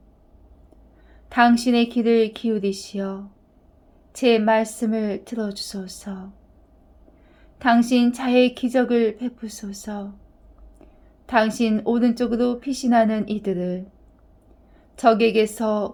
당신의 귀를 기울이시어 제 말씀을 들어주소서. 당신 자의 기적을 베푸소서. 당신 오른쪽으로 피신하는 이들을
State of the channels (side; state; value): both; identical; correlation 1.00